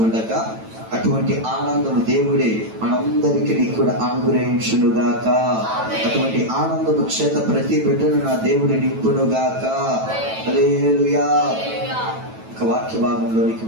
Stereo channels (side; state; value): left; late; 9.1 ms